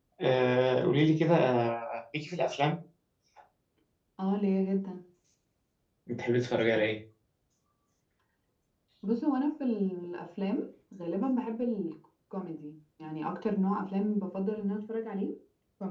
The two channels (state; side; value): identical; both; correlation 1.00